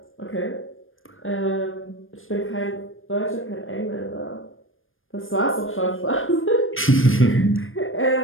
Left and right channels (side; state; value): right; late; 0.59 ms